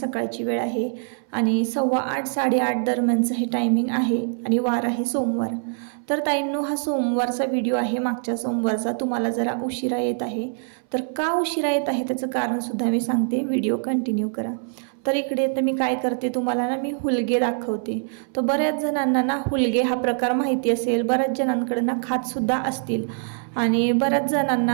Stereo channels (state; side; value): silent; left; 61 dB below the other